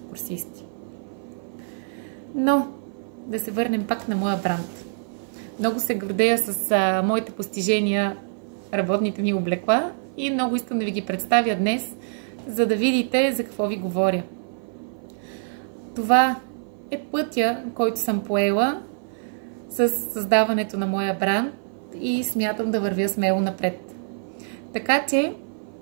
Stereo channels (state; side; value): silent; left; 56 dB below the other